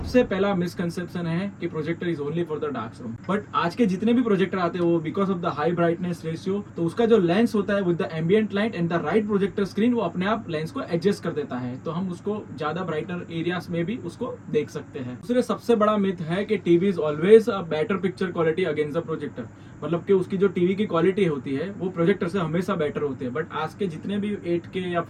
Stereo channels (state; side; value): identical; both; correlation 1.00